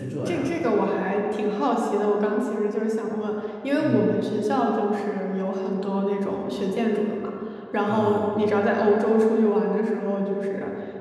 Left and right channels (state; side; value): identical; both; correlation 1.00